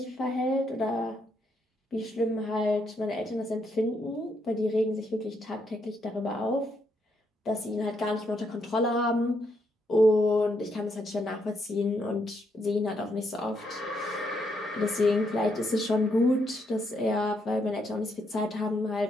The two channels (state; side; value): normal; both; correlation 0.76